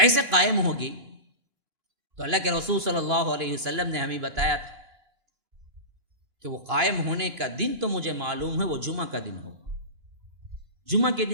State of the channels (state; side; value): late; left; 2.5 ms